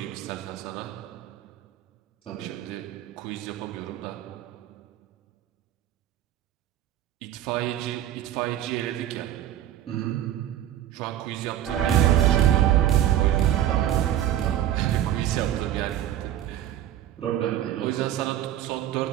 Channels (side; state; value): left; quieter; 11.8 dB